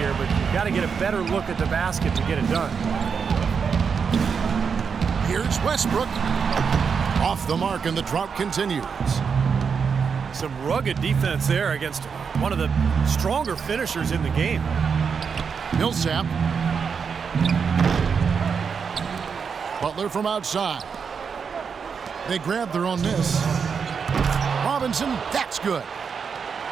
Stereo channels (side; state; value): left; quieter; 6.2 dB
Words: but you've got to get a better look at the basket to get it done. Here's Westbrook. Off the mark, and the drought continues. Some rugged defense there against one of the stronger finishers in the game. Millsap. Butler from outside. They grab their own miss. Robinson, that's good.